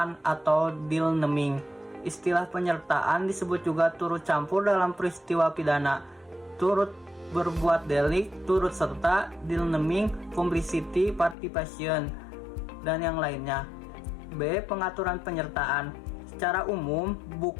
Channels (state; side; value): drops out; right; at 11.4 s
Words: atau deal naming. Istilah penyertaan disebut juga turut campur dalam peristiwa pidana, turut berbuat delik, turut serta, deal naming, complicity, participation, dan yang lainnya. B. Pengaturan penyertaan. Secara umum,